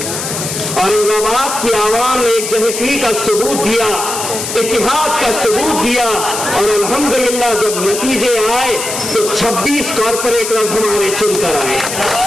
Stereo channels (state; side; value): noise; left; hiss, 5 dB below the sound